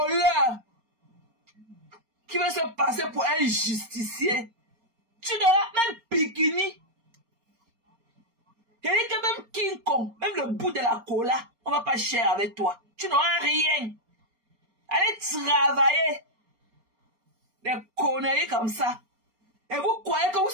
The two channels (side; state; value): left; late; 4.3 ms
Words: qui veut se passer pour un justicier. Tu n'auras même Bikini. Il dit que même King Kong, même le bout de la cola, on va pas cher avec toi. Tu n'auras rien. Allez travailler. Des conneries comme ça. Et vous croyez que vous